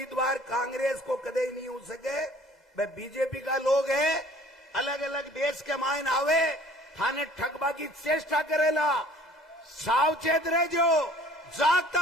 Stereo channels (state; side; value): normal; both; correlation 0.52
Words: कांग्रेस को कदे ही नहीं हो सके। वे बीजेपी का लोग है, अलग अलग देश के मायन आवे थाने ठगबा की चेष्टा करेला। सावचेत रह जो,